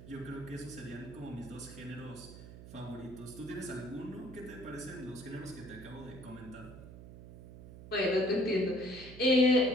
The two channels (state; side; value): noise; right; hum, 15 dB below the sound